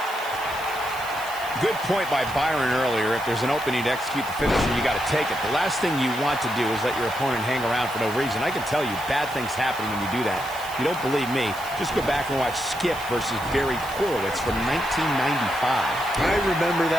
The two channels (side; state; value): right; noise; hiss, 16 dB below the sound